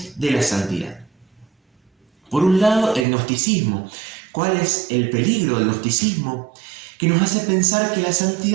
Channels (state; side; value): drops out; left; at 3.1 s